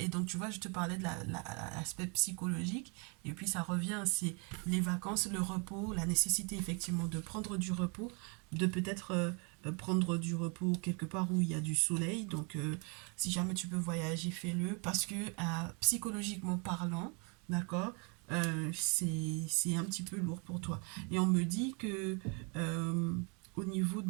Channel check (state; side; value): quieter; left; 34.3 dB